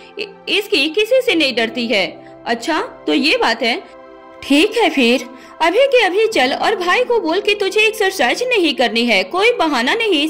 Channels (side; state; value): both; identical; correlation 1.00